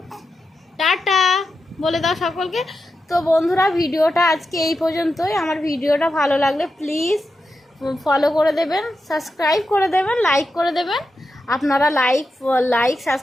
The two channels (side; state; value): both; normal; correlation 0.89